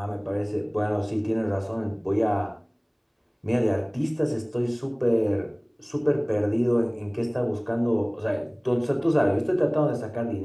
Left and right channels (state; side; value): identical; both; correlation 1.00